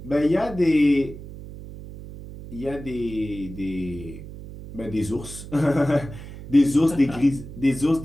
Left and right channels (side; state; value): right; noise; hum, 13 dB below the sound